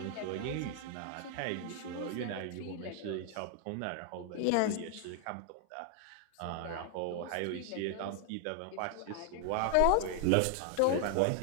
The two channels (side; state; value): both; different; correlation 0.00